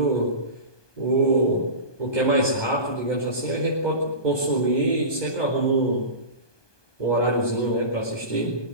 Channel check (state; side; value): late; right; 1.2 ms